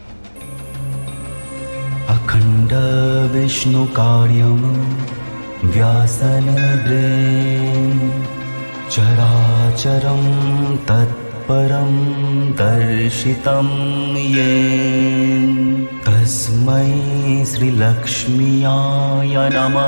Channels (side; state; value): both; inverted; correlation -1.00